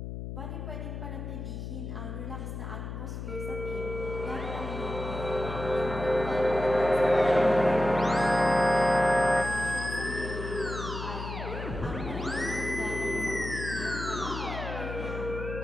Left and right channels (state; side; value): noise; left; hum, 7 dB below the sound